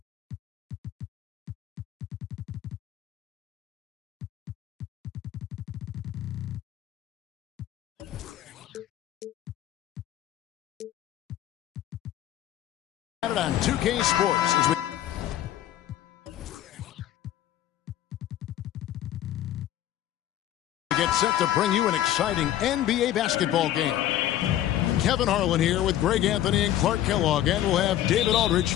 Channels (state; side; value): quieter; right; 12.6 dB